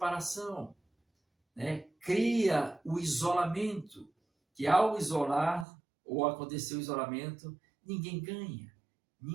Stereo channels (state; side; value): drops out; left; at 5.7 s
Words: né? Cria o isolamento, que ao isolar ou acontecer o isolamento, ninguém ganha,